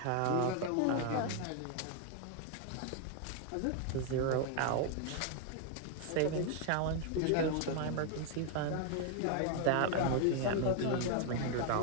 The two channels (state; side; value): different; both; correlation 0.01